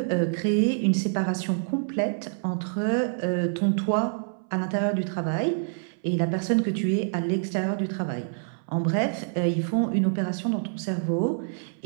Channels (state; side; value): silent; left; 60 dB below the other